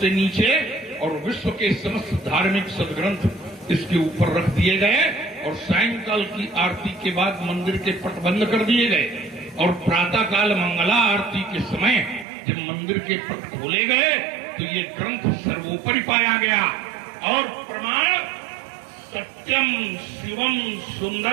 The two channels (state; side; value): drops out; left; at 12.2 s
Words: नीचे और विश्व के समस्त धार्मिक सदग्रंथ इसके ऊपर रख दिए गए, और सायंकाल की आरती के बाद मंदिर के पट बंद कर दिए गए, और प्रातःकाल मंगला आरती के समय जब मंदिर के पट खोले गए तो ये ग्रंथ सर्वोपरि पाया गया। और प्रमाण सत्यम शिवम